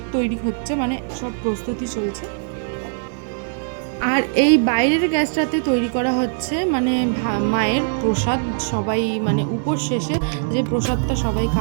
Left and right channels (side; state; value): left; silent; 64 dB below the other